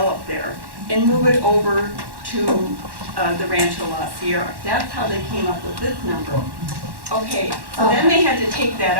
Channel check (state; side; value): late; left; 1.1 ms